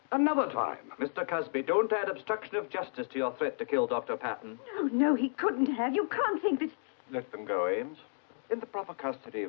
Another time. Mr. Casby, don't add obstruction of justice to your threat to kill Dr. Patton. No, he couldn't have. You can't think that... Let them go, Ames. In the proper custody,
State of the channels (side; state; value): right; silent; digital silence